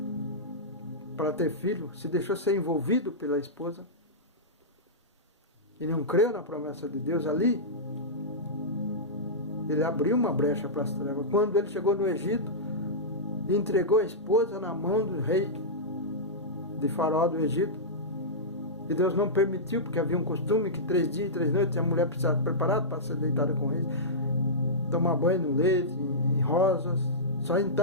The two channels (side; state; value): both; normal; correlation -0.14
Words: para ter filho, se deixou ser envolvido pela esposa, e não creu na promessa de Deus ali, ele abriu uma brecha para as trevas. Quando ele chegou no Egito, entregou a esposa na mão do rei de Faraó do Egito, e Deus não permitiu, porque havia um costume que 3 dias e 3 noites a mulher precisava estar preparada para ser deitada com ele, tomar banho no leite, em rosas, só